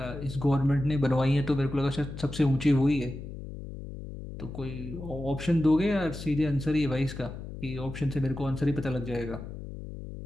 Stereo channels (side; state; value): left; noise; hum, 10 dB below the sound